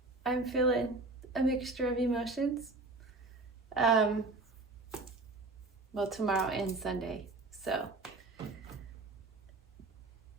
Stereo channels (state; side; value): quieter; left; 3.2 dB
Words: I'm feeling a mixture of emotions. Tomorrow and Sunday. So